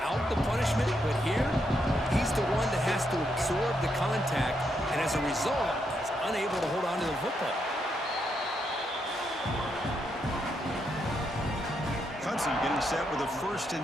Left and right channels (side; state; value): both; normal; correlation 0.79